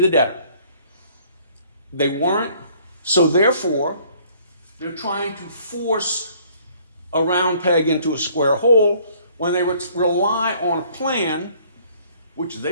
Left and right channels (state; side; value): inverted; both; correlation -0.59